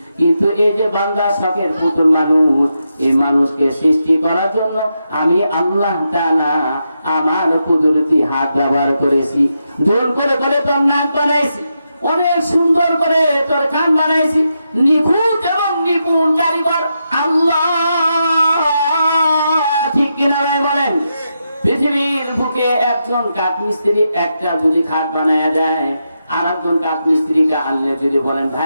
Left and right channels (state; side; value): inverted; both; correlation -0.85